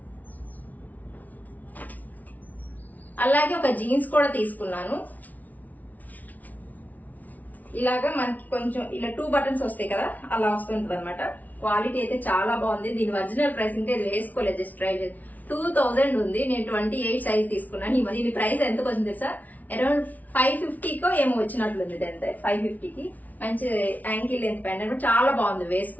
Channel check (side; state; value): right; late; 0.076 ms